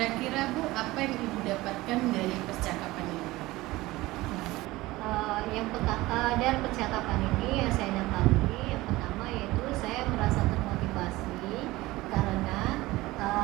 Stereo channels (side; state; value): left; quieter; 19.2 dB